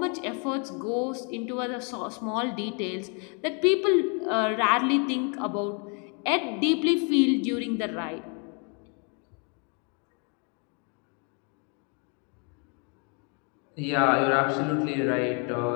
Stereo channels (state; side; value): quieter; right; 36.6 dB